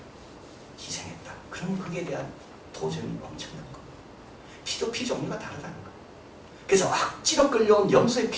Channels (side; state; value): both; identical; correlation 1.00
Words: 희생했다. 그러면 그에 대한 도전이 엄청난 겁니다. 피도 피 종류가 다르다는 거예요. 그래서 억지로 끌려온 염소의